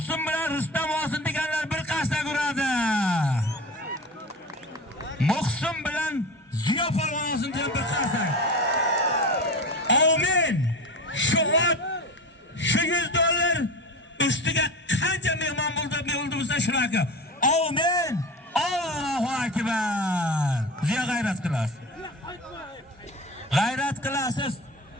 bilan Rustam olsin deganlar bir qasda ko'radi. Muhsin bilan Ziyo polvon olsin degan bir qasda. Amin. Shu ot, shu $100 ustiga qancha mehmon bo'lsa shunaqa. Amin. Allohu akbar. Ziyo g'ayrat qilasiz. G'ayrat qilasiz.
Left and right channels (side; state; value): both; normal; correlation 0.28